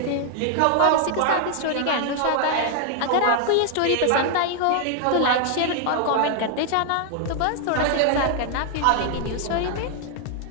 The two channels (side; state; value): both; different; correlation 0.00